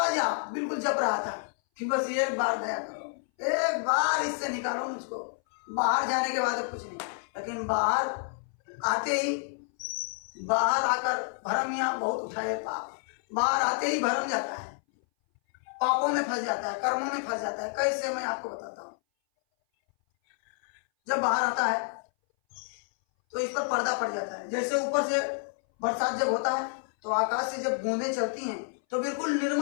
जा, बिल्कुल जप रहा था कि बस एक बार दया करो, एक बार इससे निकालो मुझको। बाहर जाने के बाद कुछ नहीं, लेकिन बाहर आते ही, बाहर आकर भरम यहाँ बहुत उठाए पाप, बाहर आते ही भरम जाता है, पापों में फंस जाता है, कर्मों में फंस जाता है। कैसे, मैं आपको बताता हूँ। जब बाहर आता है तो इस पर पर्दा पड़ जाता है। जैसे ऊपर से बरसात जब होता है तो आकाश से जब बूंदें चलती हैं तो बिल्कुल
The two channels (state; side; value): silent; right; 58 dB below the other